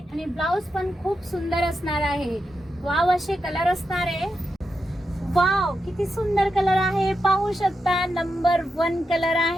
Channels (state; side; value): normal; both; correlation 0.87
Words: ब्लाउज पण खूप सुंदर असणार आहे. वाव असे कलर असणार आहे. वाव किती सुंदर कलर आहे पाहू शकता. नंबर 1 कलर